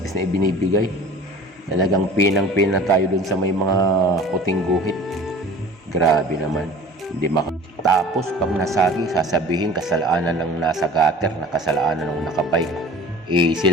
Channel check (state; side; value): normal; both; correlation 0.43